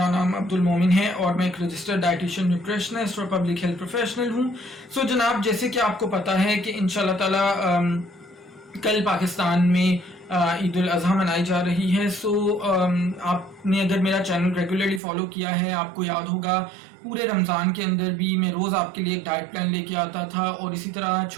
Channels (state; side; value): drops out; left; at 15.0 s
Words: नाम अब्दुल मोमिन है और मैं एक रजिस्टर्ड डाइटिशियन न्यूट्रिशनिस्ट और पब्लिक हेल्थ प्रोफेशनल हूँ। सो जनाब, जैसे कि आपको पता है कि इंशाल्लाह ताला कल पाकिस्तान में ईद उल अज़हा मनाई जा रही है। सो आपने अगर मेरा चैनल रेगुलरली फॉलो किया है, आपको याद होगा पूरे रमज़ान के अंदर भी मैं रोज़ आपके लिए एक डाइट प्लान लेके आता था और इसी तरह